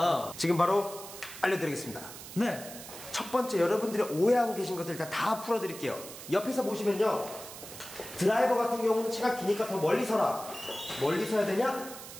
지금 바로 알려드리겠습니다. 네. 첫 번째 여러분들이 오해하고 계신 것들 일단 다 풀어드릴게요. 옆에서 보시면요. 드라이버 같은 경우는 채가 기니까 더 멀리 서라. 멀리 서야 되냐?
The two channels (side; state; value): right; noise; hiss, 13 dB below the sound